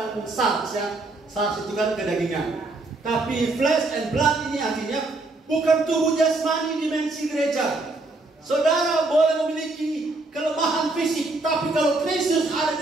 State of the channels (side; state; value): left; quieter; 3.1 dB